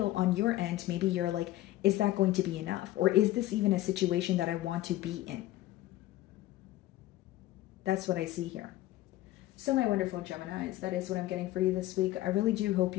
on your end, maybe you're like, is that going to be enough? Or is this even a situation that I want to be in? That's what I see here. So my wonderful Geminis, that is what I'm getting for you this week. I really do hope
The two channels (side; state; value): right; quieter; 15.8 dB